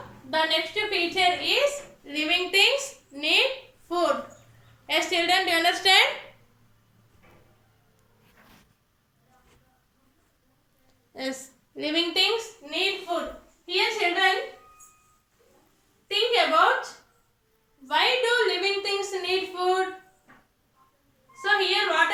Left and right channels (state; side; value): identical; both; correlation 1.00